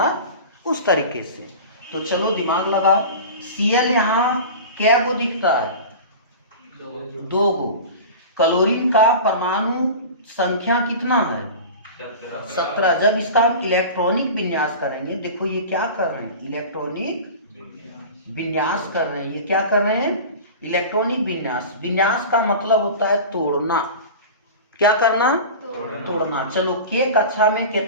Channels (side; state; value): both; inverted; correlation -0.34